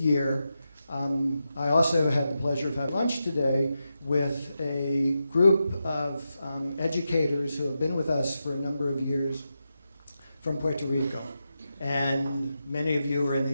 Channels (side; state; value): both; inverted; correlation -0.88